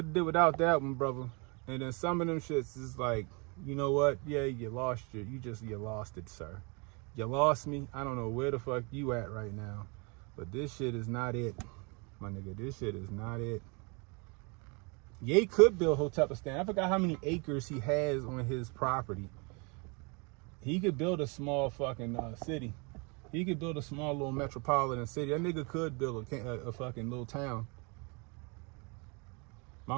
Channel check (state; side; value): quieter; left; 31.4 dB